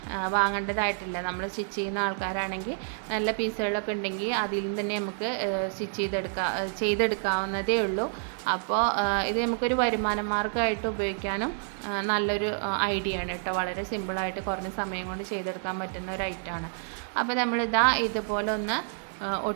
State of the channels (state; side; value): silent; left; digital silence